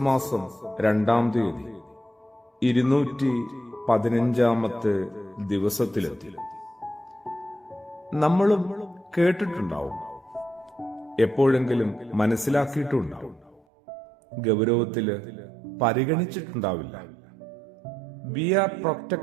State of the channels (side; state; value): left; drops out; at 13.6 s